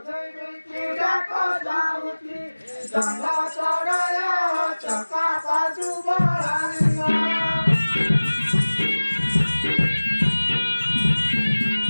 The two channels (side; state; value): both; inverted; correlation -1.00